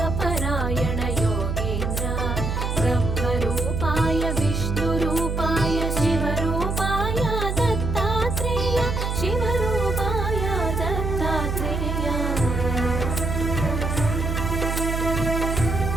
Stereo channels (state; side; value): noise; right; hum, 1 dB below the sound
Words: योगेन्द्र ब्रह्मरूपाय विष्णुरूपाय शिवरूपाय दत्तात्रेय शिवरूपाय दत्तात्रेय।